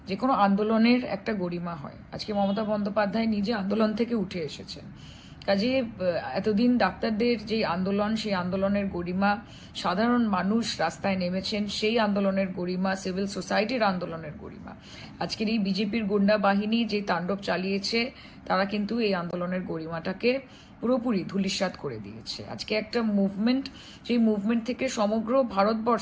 যে কোনো আন্দোলনের একটা গরিমা হয়। আজকে মমতা বন্দ্যোপাধ্যায় নিজে আন্দোলন থেকে উঠে এসেছেন। কাজে এতদিন ডাক্তারদের যে আন্দোলন, সেই আন্দোলনের গরিমা, সাধারণ মানুষ রাস্তায় নেমেছেন, সেই আন্দোলনের গরিমা, সিভিল সোসাইটির আন্দোলনের গরিমা, আজকের এই বিজেপির গুন্ডা বাহিনী যে তাণ্ডব চালিয়েছে, তারা কিন্তু এই আন্দোলনের গরিমাটাকে পুরোপুরি ধূলিসাৎ করে দিয়েছে। আজকে একটা মুভমেন্ট, সেই মুভমেন্ট থেকে সমগ্র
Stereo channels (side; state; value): both; identical; correlation 1.00